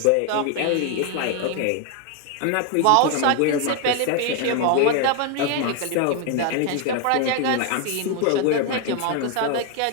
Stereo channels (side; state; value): both; different; correlation 0.00